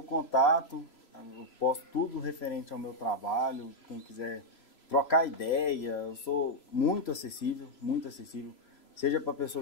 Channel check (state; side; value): late; right; 3.0 ms